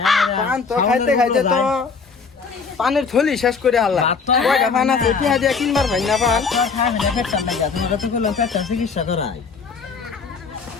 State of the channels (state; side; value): quieter; right; 5.2 dB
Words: পান তো খাইতে খাইতে তো পানের থলি শেষ করে হাল্লা কয়টা পান আছে টিয়া দিয়া কিনবার ভাই না পান চিকিৎসা করাই